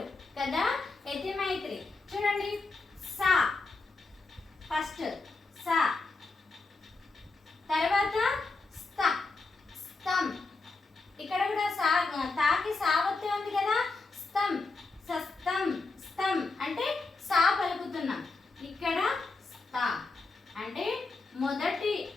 కదా యతి మైత్రి. చూడండి సా ఫస్ట్ సా, తర్వాత స్థ స్థం, ఇక్కడ కూడా సా తాకి సావత్తే ఉంది కదా స్థం సస్తం స్థం అంటే సా పలుకుతున్నాం. ఇక్కడ స్థ అంటే మొదటి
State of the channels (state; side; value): quieter; right; 3.7 dB